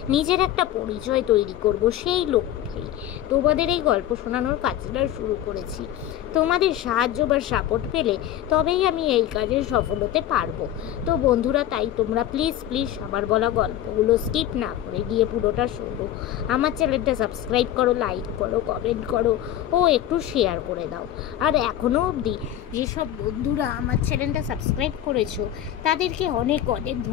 নিজের একটা পরিচয় তৈরি করব, সেই লক্ষ্যেই তোমাদের এই গল্প শোনানোর কাজটা শুরু করেছি। তোমাদের সাহায্য বা সাপোর্ট পেলে তবেই আমি এই কাজে সফল হতে পারবো। তো বন্ধুরা, তাই তোমরা প্লিজ আমার বলা গল্পগুলো স্কিপ না করে গিয়ে পুরোটা শোনো। আমার চ্যানেলটা সাবস্ক্রাইব করো, লাইক করো, কমেন্ট করো ও একটু শেয়ার করে দাও। আর এখনও অবধি যেসব বন্ধুরা আমার চ্যানেলটা সাবস্ক্রাইব করেছো তাদেরকে অনেক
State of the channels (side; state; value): right; quieter; 11.9 dB